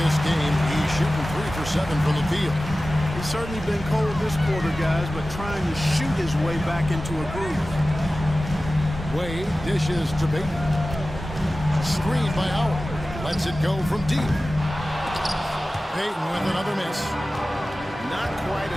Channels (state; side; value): normal; both; correlation 0.96